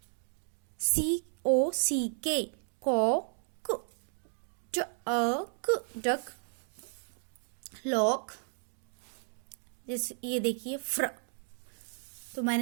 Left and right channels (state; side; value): silent; left; digital silence